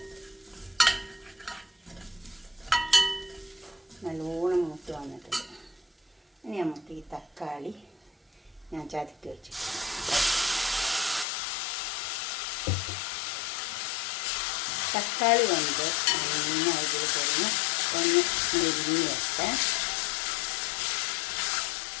നല്ലോണം മൂത്ത് വന്നിട്ടുണ്ട്. ഇനി നമുക്ക് ഈ തക്കാളി ഞാൻ ചതക്കി വെച്ചു. തക്കാളി കൊണ്ട് നന്നായി ഇതിൽ കഴിഞ്ഞ് ഒന്ന് മെരിഞ്ഞ് വെക്കാം.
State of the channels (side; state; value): right; drops out; at 11.2 s